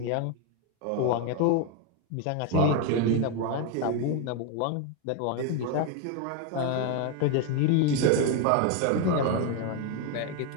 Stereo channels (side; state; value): both; different; correlation 0.02